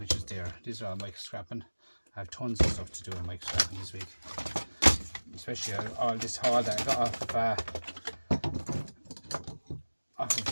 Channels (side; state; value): both; inverted; correlation -1.00